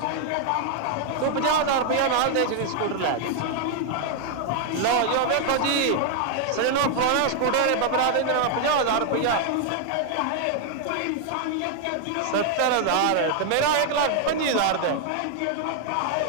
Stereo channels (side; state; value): both; different; correlation 0.00